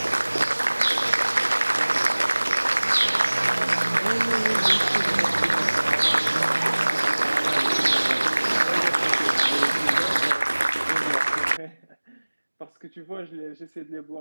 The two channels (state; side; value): inverted; both; correlation -1.00